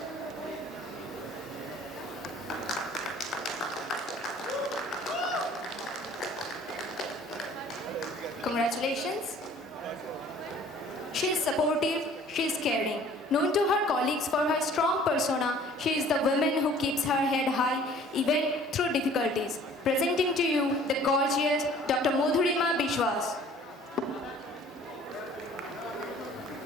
Congratulations. She is supportive, she is caring. Known to her colleagues for her strong persona, she is the woman who keeps her head high even through difficulties. Presenting to you the gorgeous Dr. Madhurima Bishwas.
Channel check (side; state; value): both; normal; correlation 0.52